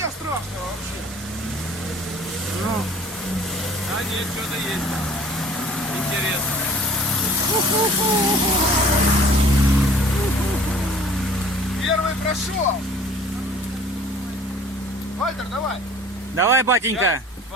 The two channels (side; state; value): both; normal; correlation 0.50